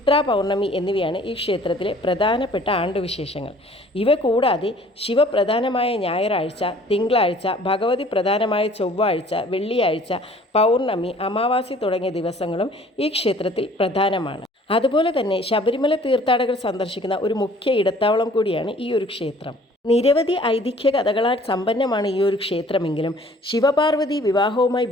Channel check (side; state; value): both; normal; correlation 0.54